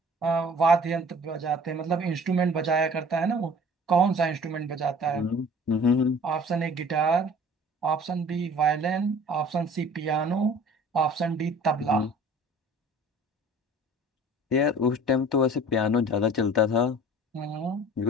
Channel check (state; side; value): normal; both; correlation 0.47